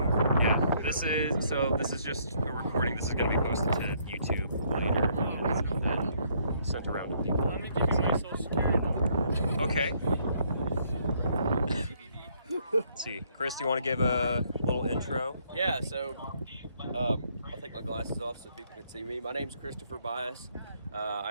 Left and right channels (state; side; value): inverted; both; correlation -0.68